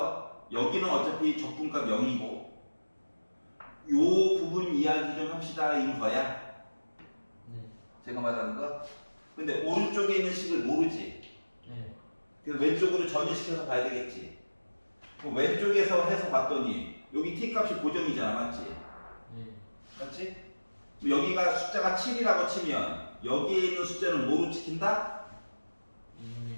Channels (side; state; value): both; inverted; correlation -1.00